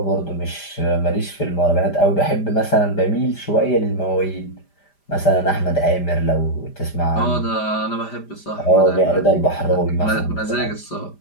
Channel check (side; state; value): right; late; 5.0 ms